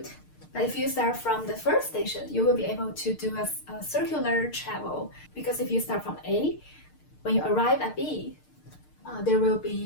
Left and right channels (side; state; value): right; late; 6.6 ms